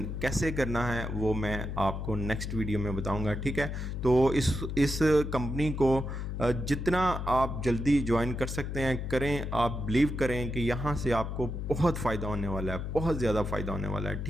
कैसे करना है वो मैं आपको नेक्स्ट वीडियो में बताऊंगा, ठीक है। तो इस कंपनी को जितना आप जल्दी ज्वाइन कर सकते हैं करें। आप बिलीव करें कि यहाँ से आपको बहुत फ़ायदा होने वाला है, बहुत ज़्यादा फ़ायदा होने वाला है,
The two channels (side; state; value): left; noise; hum, 4 dB below the sound